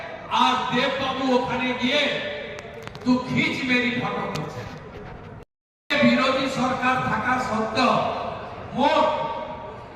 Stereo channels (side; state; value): both; identical; correlation 1.00